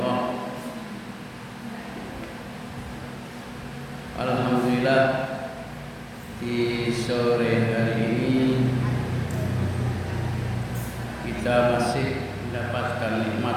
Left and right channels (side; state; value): both; identical; correlation 1.00